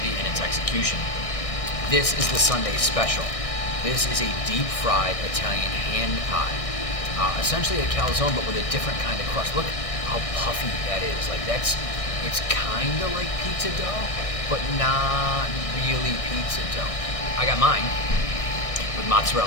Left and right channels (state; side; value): late; right; 1.6 ms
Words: and its execution. This is the Sunday special. This is a deep fried Italian hand pie. Essentially a calzone, but with a different kind of crust. Look how puffy that is. It's kind of like pizza dough, but not really pizza dough. I got mine with